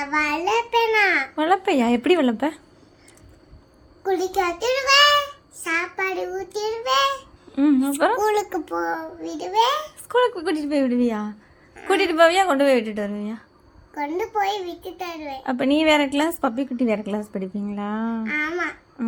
வளர்ப்பேனா? வளர்ப்பையா? எப்படி வளர்ப்ப? குளிக்க வச்சிடுவேன், சாப்பாடு ஊற்றிடுவேன், அப்புறம் ஸ்கூலுக்கு விடுவேன். ஸ்கூலுக்கு கூட்டிட்டு போய் விடுவியா? கூட்டிட்டு போவியா கொண்டு போய் விட்டுட்டு வருவியா? கொண்டு போய் விட்டுட்டு வருவேன். அப்போ நீ வேற கிளாஸ், பப்பி குட்டி வேற கிளாஸ் படிப்பீங்களா? ஆமா.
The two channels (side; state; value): both; identical; correlation 1.00